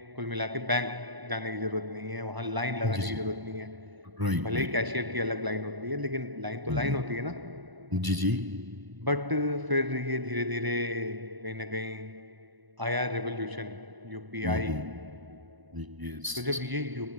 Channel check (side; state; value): left; late; 1.0 ms